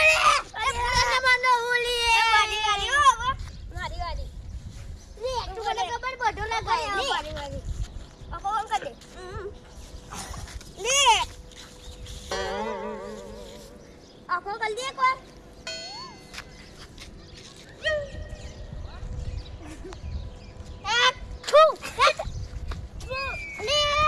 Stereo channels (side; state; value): both; identical; correlation 1.00